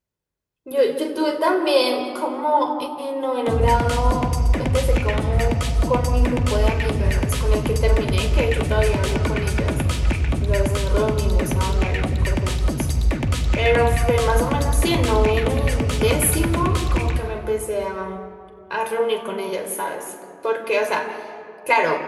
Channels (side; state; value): both; identical; correlation 1.00